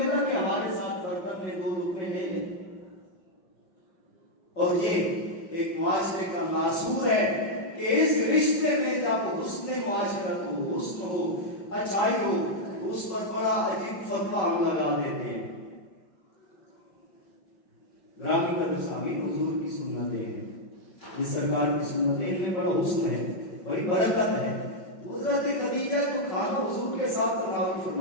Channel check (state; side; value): late; right; 5.1 ms